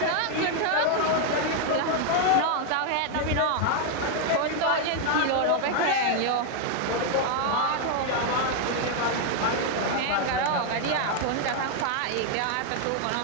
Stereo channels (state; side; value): different; both; correlation 0.00